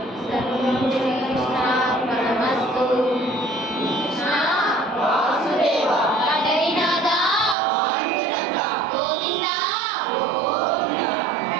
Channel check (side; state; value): left; drops out; at 7.6 s